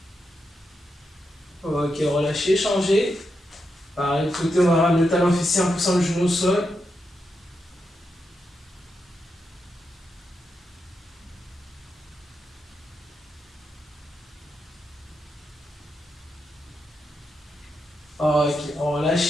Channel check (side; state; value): both; normal; correlation 0.85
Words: Ok, relâchez, changez. Pareil, de côté, on va ramener le talon fessier en poussant le genou au sol. Ok, on va